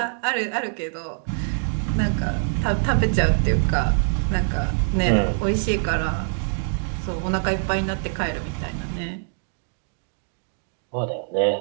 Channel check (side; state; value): left; silent; digital silence